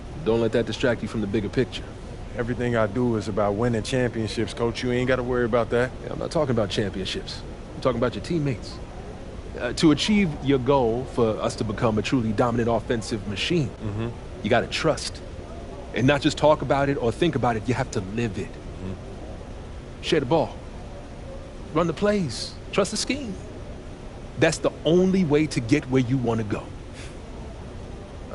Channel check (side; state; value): both; identical; correlation 1.00